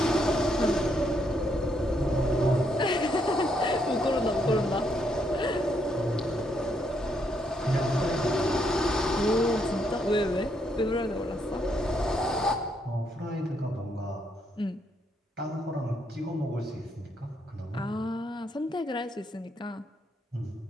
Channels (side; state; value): both; normal; correlation 0.75